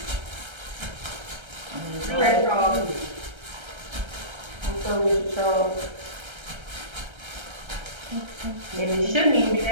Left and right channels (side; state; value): left; late; 1.3 ms